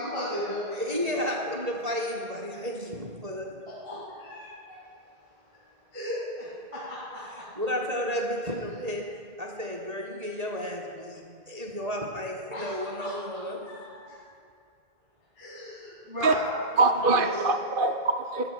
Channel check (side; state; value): left; late; 1.8 ms